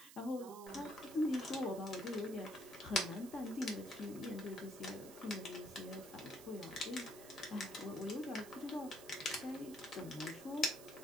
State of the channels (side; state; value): right; noise; hiss, 15 dB below the sound